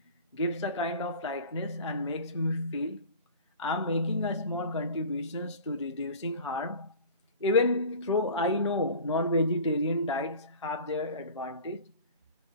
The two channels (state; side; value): inverted; both; correlation -0.40